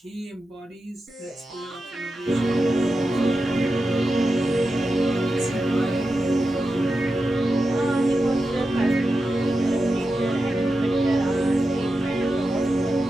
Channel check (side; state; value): both; normal; correlation 0.91